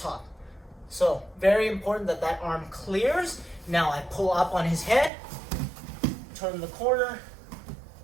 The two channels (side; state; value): left; drops out; at 5.1 s